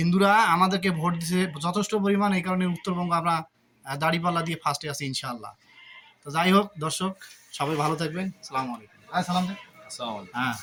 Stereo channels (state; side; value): identical; both; correlation 1.00